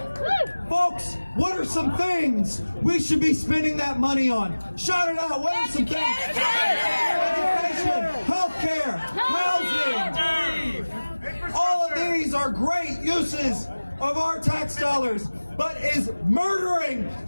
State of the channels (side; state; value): both; inverted; correlation -1.00